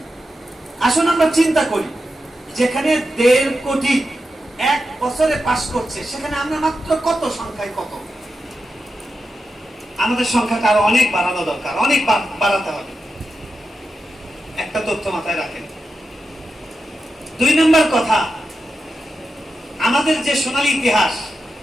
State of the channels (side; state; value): both; normal; correlation 0.89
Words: আসুন আমরা চিন্তা করি, যেখানে 1.5 কোটি এক বছরে পাস করছে, সেখানে আমরা মাত্র কত সংখ্যায় কত? আমাদের সংখ্যাটা আরো অনেক বাড়ানো দরকার, অনেক বাড়াতে হবে। একটা তথ্য মাথায় রাখেন। 2 নম্বর কথা, আমাদের যে সোনালী ইতিহাস,